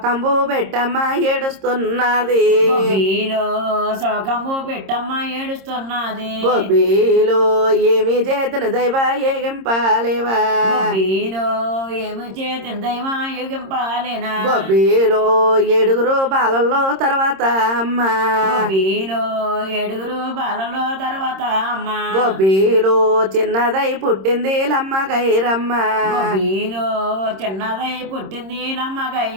పెట్టమ్మ ఏడుస్తున్నది గొబ్బిలో శోకంబు పెట్టమ్మ ఏడుస్తున్నది గొబ్బిలో ఏమి చేతను దైవ ఏగింపాలేవా గొబ్బిలో ఏమి చేతిన దైవా యుగింపాలేనా గొబ్బిలో ఏడుగురు బాలల్లో తర్వాత అమ్మ గొబ్బిలో ఏడుగురు బాలలో తర్వాత అమ్మ గొబ్బిలో చిన్నదై పుట్టింది లమ్మ గైరమ్మ గొబ్బిలో చిన్నదై పుట్టింది లమ్మ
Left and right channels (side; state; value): left; late; 26 ms